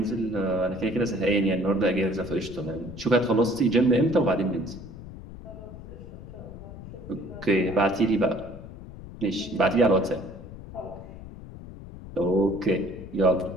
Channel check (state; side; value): noise; left; rumble, 14 dB below the sound